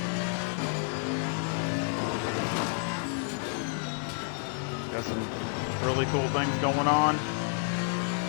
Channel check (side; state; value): right; silent; 58 dB below the other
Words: got some really cool things going on.